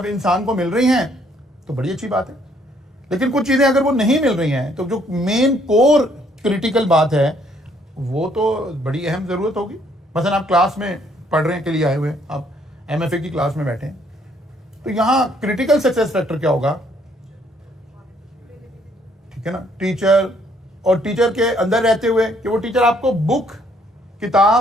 इंसान को मिल रही हैं तो बड़ी अच्छी बात है, लेकिन कुछ चीजें अगर वो नहीं मिल रही हैं तो जो मेन कोर क्रिटिकल बात है वो तो बड़ी अहम जरूरत होगी। मसलन आप क्लास में पढ़ने के लिए आए हुए हैं, आप एमएफए की क्लास में बैठे हैं, तो यहां क्रिटिकल सक्सेस फैक्टर क्या होगा, ठीक है ना, टीचर, और टीचर के अंदर रहते हुए कि वो टीचर आपको बुक,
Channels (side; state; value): both; normal; correlation 0.66